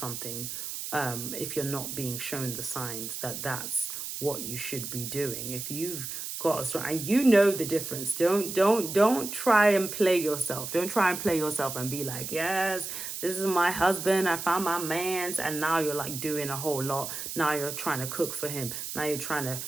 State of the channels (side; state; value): right; noise; hiss, 6 dB below the sound